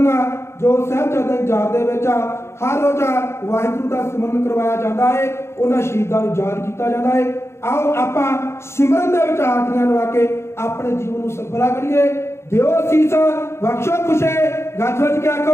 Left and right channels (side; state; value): right; late; 0.13 ms